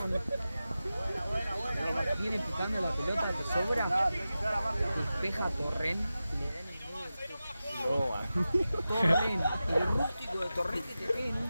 viene picando la pelota que sobra, despeja Torrent y le da en el medio del pecho. Torrent, el rústico de Torrent que te pega en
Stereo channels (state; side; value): inverted; both; correlation -0.94